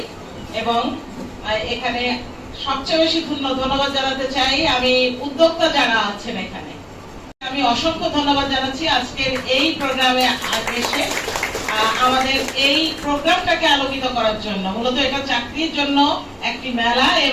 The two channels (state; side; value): identical; both; correlation 1.00